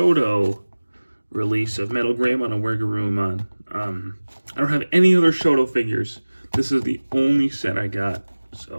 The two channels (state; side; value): inverted; both; correlation -1.00